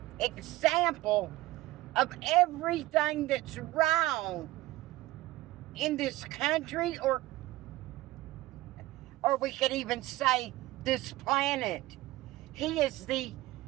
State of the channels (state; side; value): quieter; left; 17.8 dB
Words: example of everything that's wrong in this country, or we could even say this planet. He is the,